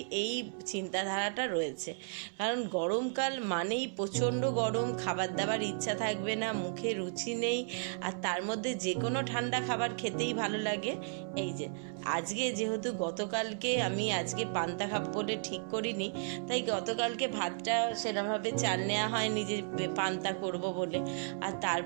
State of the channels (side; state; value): left; silent; 55 dB below the other